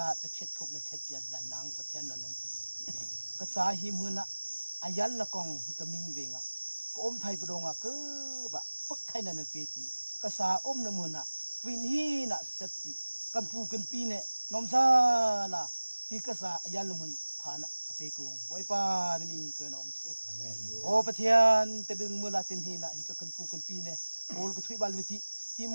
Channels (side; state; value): both; inverted; correlation -1.00